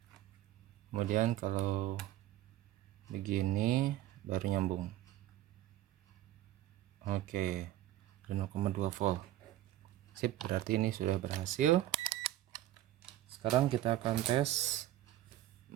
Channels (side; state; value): left; quieter; 14.1 dB